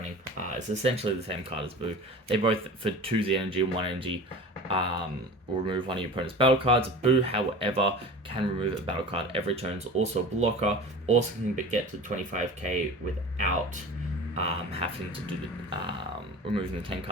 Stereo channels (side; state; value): both; normal; correlation 0.36